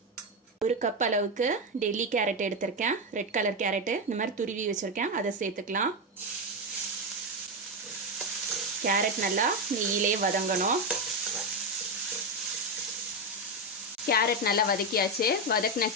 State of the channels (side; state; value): both; normal; correlation 0.10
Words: ஒரு கப் அளவுக்கு டெல்லி கேரட் எடுத்திருக்கேன். ரெட் கலர் கேரட்டு இந்த மாதிரி துருவி வச்சுருக்கேன். அதை சேர்த்துக்கலாம். கேரட் நல்லா நெய்யிலே வதங்கணும். கேரட் நல்லா வதக்கியாச்சு. வதக்கின